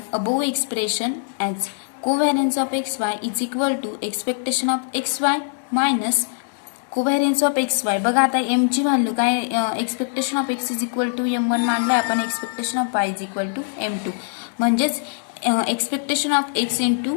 above expression as covariance of xy is equal to expectation of xy minus covariance of xy. बघा आता m ची value काय expectation of x is equal to m1 मानलाय आपण, expectation of y is equal to m2 म्हणजेच expectation of x into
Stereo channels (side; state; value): right; silent; digital silence